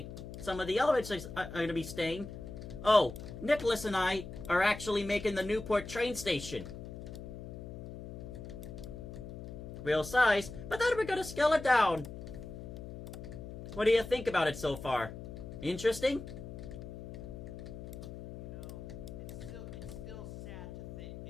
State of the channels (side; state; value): left; noise; hum, 10 dB below the sound